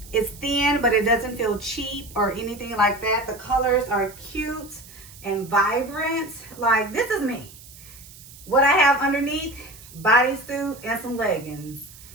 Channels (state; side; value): noise; right; hiss, 19 dB below the sound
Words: It's thin, but it doesn't feel cheap or anything like that. The colors are cute and vibrant. Like, this is me. What I have underneath, bodysuit and some leggings.